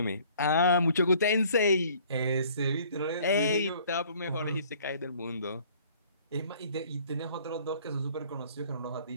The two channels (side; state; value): both; inverted; correlation -0.55